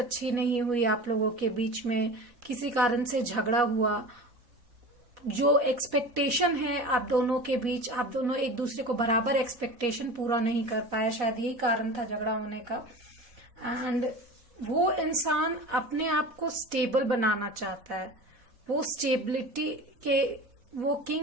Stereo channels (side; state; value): left; late; 4.1 ms